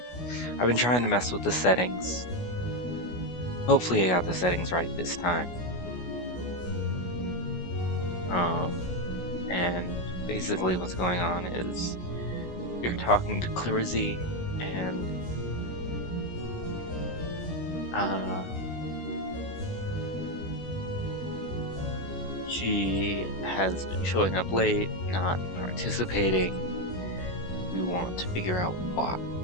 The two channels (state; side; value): late; right; 16 ms